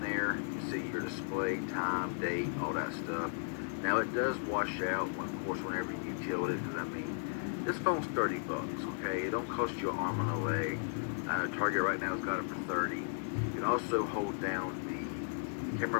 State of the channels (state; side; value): silent; right; 54 dB below the other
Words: there. You can see your display, time, date, all that stuff. Now it does wash out, of course, whenever you tilt it, because I mean, this phone's $30, okay? It don't cost you an arm and a leg. I know Target right now has got it for 30. You can also hold down the